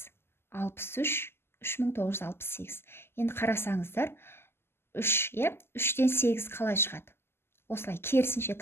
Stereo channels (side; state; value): right; late; 0.12 ms